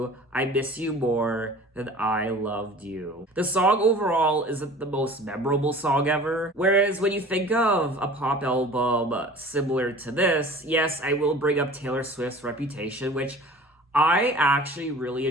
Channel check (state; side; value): normal; both; correlation 0.44